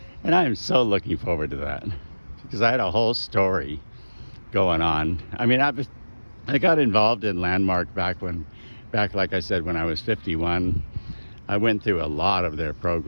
And I am so looking forward to that because I had a whole story going on. I mean, I got involved in Landmark back, like I said, when I was 51. I went through a lot of their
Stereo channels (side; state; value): both; inverted; correlation -1.00